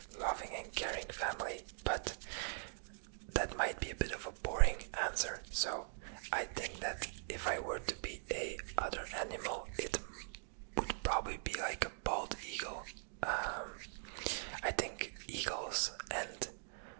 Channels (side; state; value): left; silent; digital silence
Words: loving and caring family, but that might be a bit of a boring answer. So I think that if I were to be a other animal, it would probably be like a bald eagle. I think eagles and